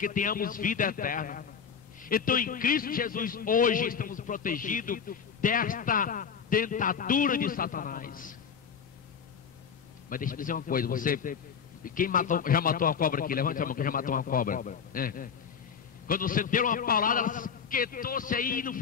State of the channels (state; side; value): quieter; right; 6.9 dB